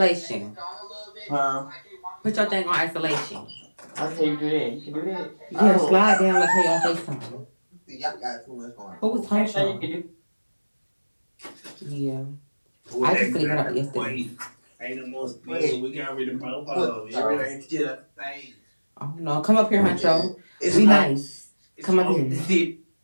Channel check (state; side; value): inverted; both; correlation -1.00